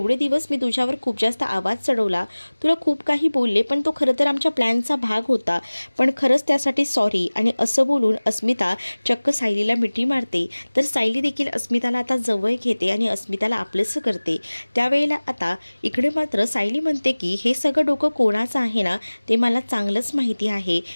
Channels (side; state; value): both; inverted; correlation -1.00